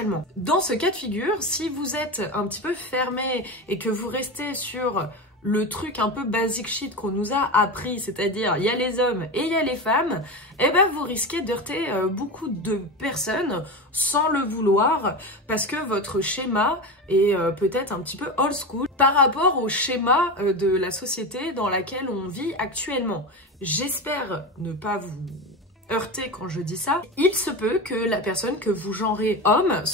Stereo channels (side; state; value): both; normal; correlation 0.22